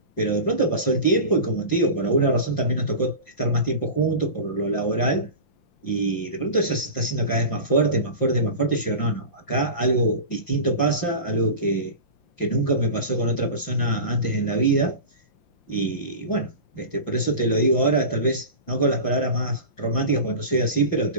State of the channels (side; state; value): right; late; 5.8 ms